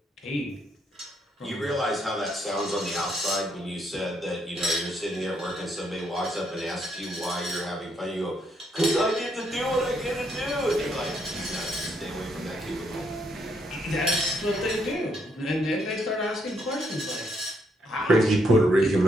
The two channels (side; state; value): both; normal; correlation 0.74